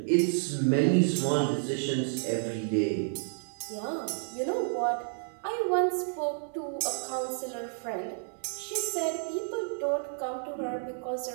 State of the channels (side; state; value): left; silent; digital silence